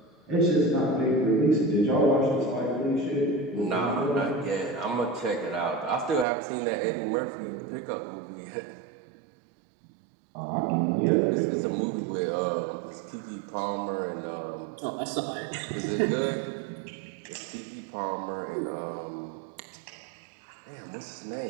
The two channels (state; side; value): drops out; left; at 6.2 s